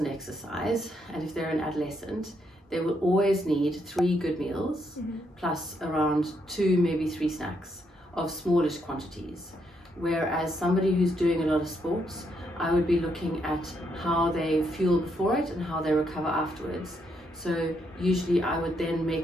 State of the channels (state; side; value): normal; both; correlation 0.76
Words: exercise, and if they're an adolescent, they will always need 3 good meals plus around 2, maybe 3 snacks of smallish quantities. Whereas somebody who's doing a lot of sports, I would be looking at how they fuel before it and how they recover afterwards. So usually I would then